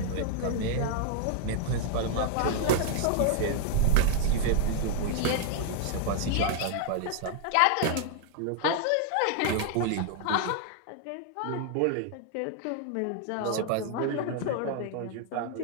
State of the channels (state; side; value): different; both; correlation 0.00